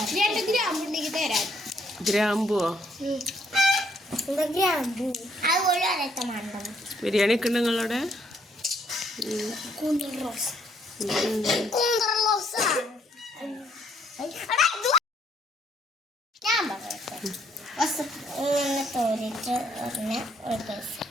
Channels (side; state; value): both; normal; correlation 0.69